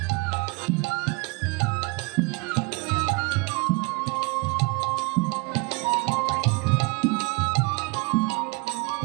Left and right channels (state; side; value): quieter; left; 29.4 dB